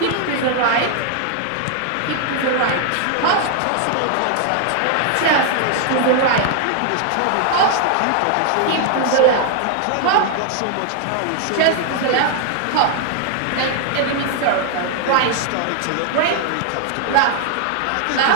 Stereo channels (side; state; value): both; different; correlation 0.00